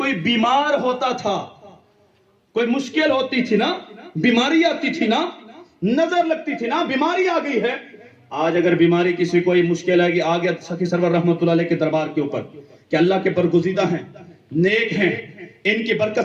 بیمار ہوتا تھا، کوئی مشکل ہوتی تھی نا، بیماری آتی تھی نا، نظر لگتی تھی نا، بیماری آ گئی ہے۔ آج اگر بیماری کسی کوئی مشکل آئے گی، آ گیا سخی سرور رحمت اللہ علیہ کے دربار کے اوپر کہ اللہ کے برگزیدہ ہیں، نیک ہیں، ان کی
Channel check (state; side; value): identical; both; correlation 1.00